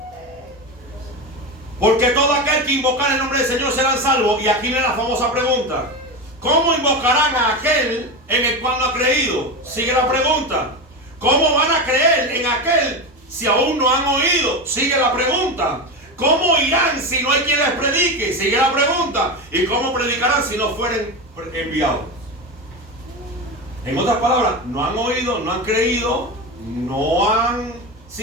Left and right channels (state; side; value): normal; both; correlation 0.20